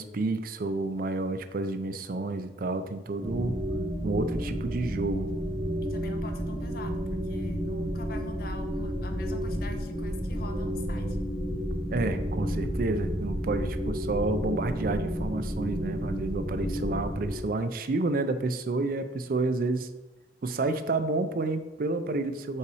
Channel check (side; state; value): both; normal; correlation 0.62